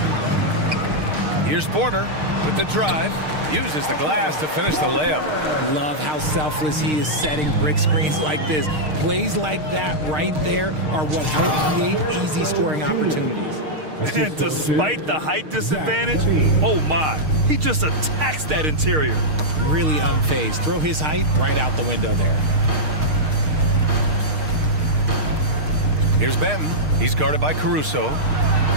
Here's Porter with the drive. Uses the glass to finish the layup. Love how selfless he is setting brick screens like this. Plays like that right there are what help create easy scoring opportunities. And despite the height disadvantage, oh my, he just attacks that interior. Really unfazed. Throw his height right out the window there. Here's Benton. He's guarded by Caruso.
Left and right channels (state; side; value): late; left; 6.5 ms